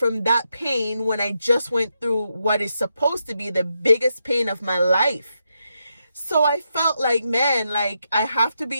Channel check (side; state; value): both; inverted; correlation -0.83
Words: that pain when I just went through what is supposed to be the biggest pain of my life? So I felt like, man, like I have to